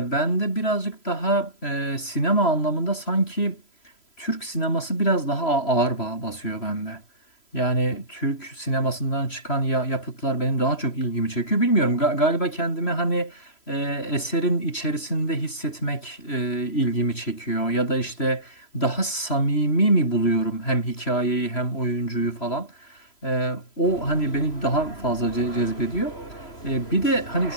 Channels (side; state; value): right; late; 3.0 ms